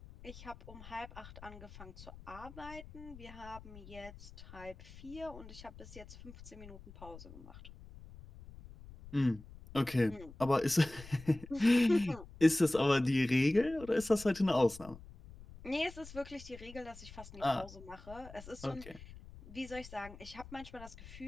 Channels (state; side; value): noise; left; rumble, 17 dB below the sound